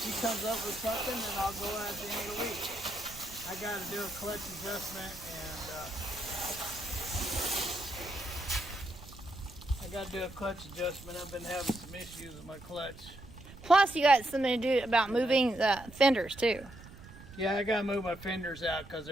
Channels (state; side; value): noise; right; rumble, 17 dB below the sound